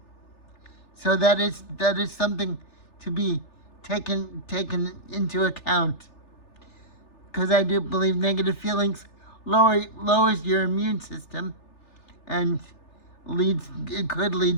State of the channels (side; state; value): right; late; 3.4 ms